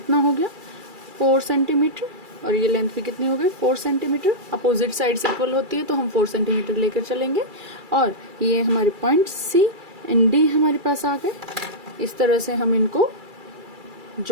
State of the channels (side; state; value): left; late; 2.3 ms